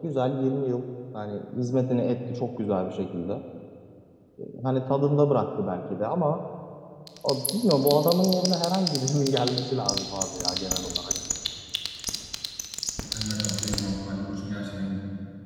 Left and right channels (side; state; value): both; identical; correlation 1.00